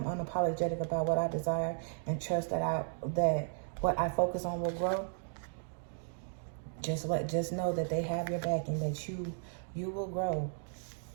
unapologetic about what I desire, and trust that what I focus on will grow. Just know that they have your back, and that you will grow.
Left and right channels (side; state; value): left; silent; digital silence